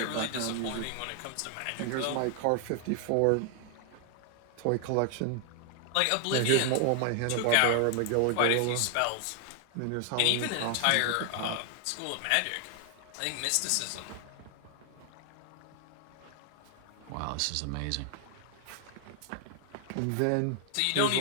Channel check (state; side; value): different; both; correlation 0.00